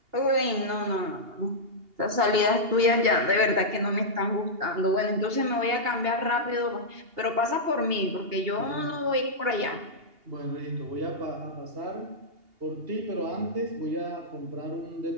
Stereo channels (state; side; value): late; left; 2.8 ms